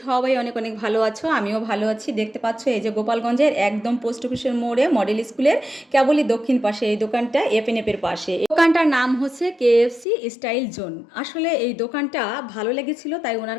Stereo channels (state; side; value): drops out; right; at 10.1 s